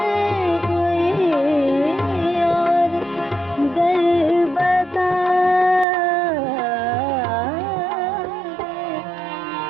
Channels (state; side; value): drops out; left; at 5.9 s